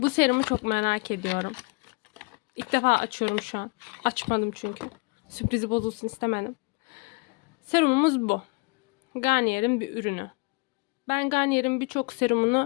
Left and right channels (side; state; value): right; quieter; 31.0 dB